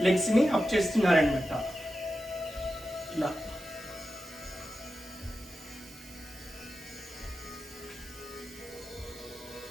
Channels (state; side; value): noise; right; hiss, 19 dB below the sound